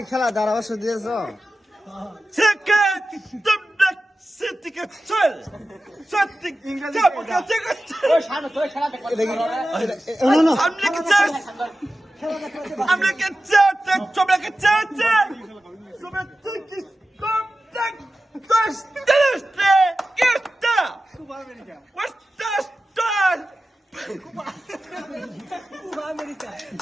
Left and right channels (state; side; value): normal; both; correlation 0.94